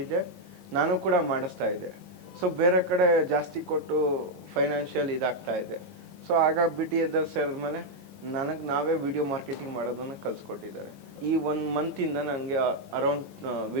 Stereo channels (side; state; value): left; late; 20 ms